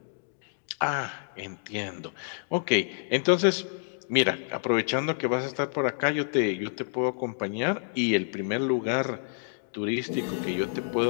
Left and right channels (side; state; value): right; silent; digital silence